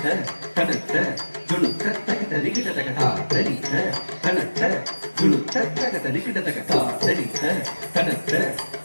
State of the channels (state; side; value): inverted; both; correlation -1.00